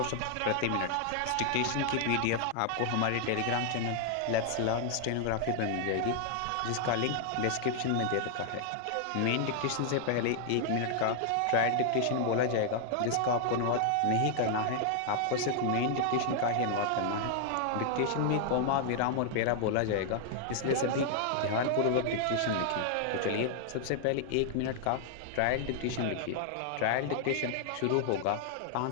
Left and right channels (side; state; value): both; different; correlation 0.00